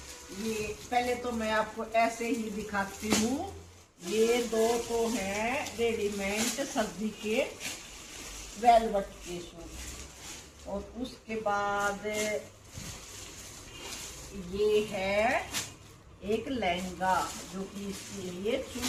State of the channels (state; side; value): identical; both; correlation 1.00